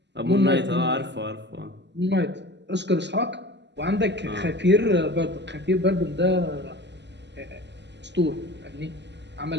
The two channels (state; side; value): late; left; 0.51 ms